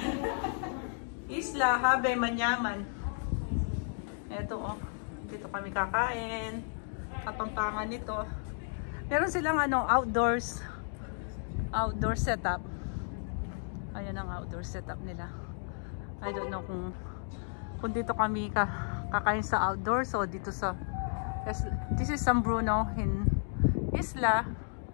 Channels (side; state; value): right; silent; 56 dB below the other